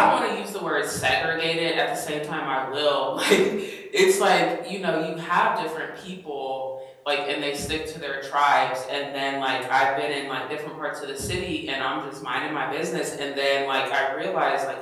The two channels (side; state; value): both; identical; correlation 1.00